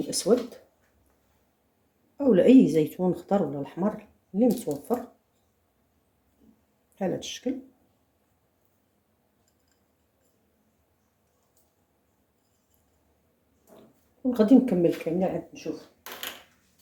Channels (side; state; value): both; identical; correlation 1.00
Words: الاسود اولا اي زيتون خضر ولا الاحمر اللي متوفر بحال هذا الشكل. وغادي نكمل كامله عاد نشوف.